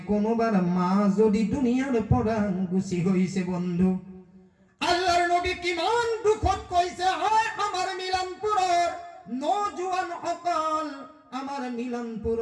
কোনোবার মা যদি দুনিয়ার পৰা গুছি হইছে বন্ধু আল্লাহর নবী কিমান দুখত কইছে হয় আমার মিলানপুৰৰ নজওয়ান সকল আমার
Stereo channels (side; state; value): both; identical; correlation 1.00